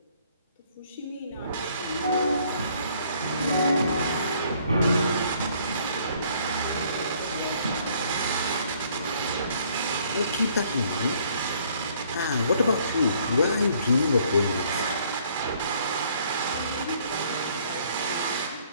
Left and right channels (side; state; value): both; inverted; correlation -0.62